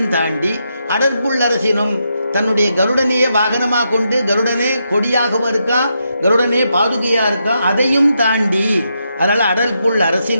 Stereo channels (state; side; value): inverted; both; correlation -0.82